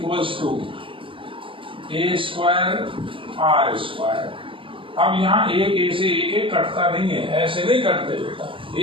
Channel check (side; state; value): left; late; 0.25 ms